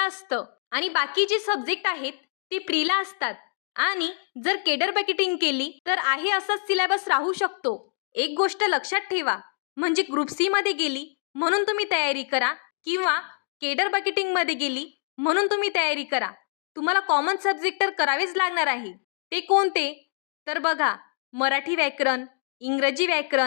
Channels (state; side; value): silent; right; 57 dB below the other